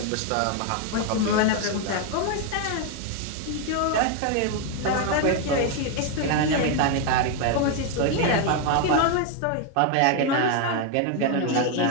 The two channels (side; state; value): both; different; correlation 0.01